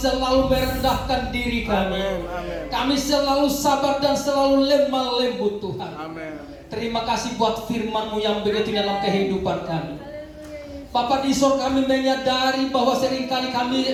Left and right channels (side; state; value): both; identical; correlation 1.00